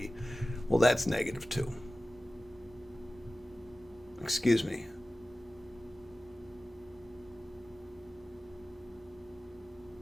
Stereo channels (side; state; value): both; normal; correlation 0.96